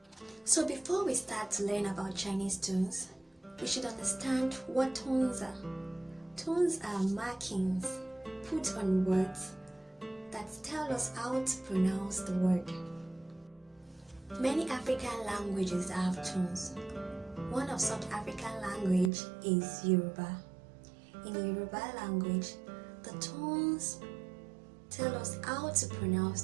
So before we start to learn about Chinese tones, we should understand what tones are. Tones are markings put on words that tell us how to pronounce the word. Many African languages have tones. One of such African language is Yoruba. In Yoruba language, the tones tell us how to pronounce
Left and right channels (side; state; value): left; drops out; at 19.1 s